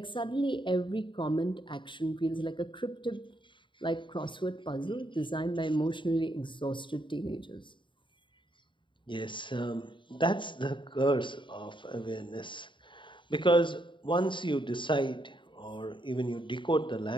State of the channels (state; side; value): late; right; 0.23 ms